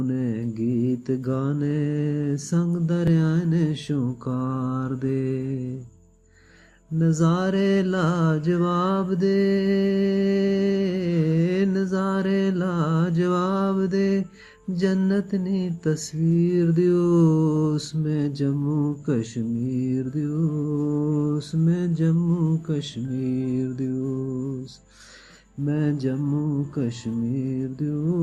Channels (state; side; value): identical; both; correlation 1.00